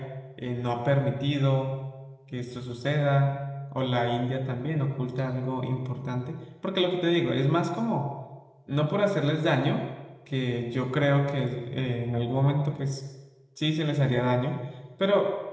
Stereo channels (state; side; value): identical; both; correlation 1.00